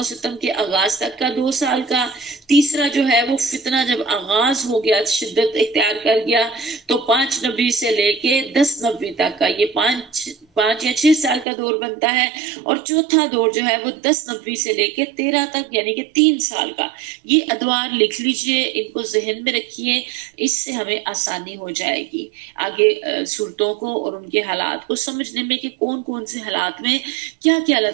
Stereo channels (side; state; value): left; drops out; at 11.5 s